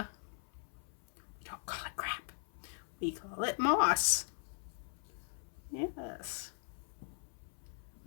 we don't call it crap. We call it moss. Yes.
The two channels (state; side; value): silent; right; 51 dB below the other